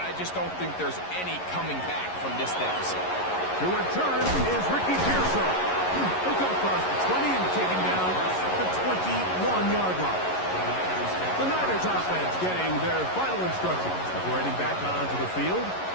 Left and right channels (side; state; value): right; late; 11 ms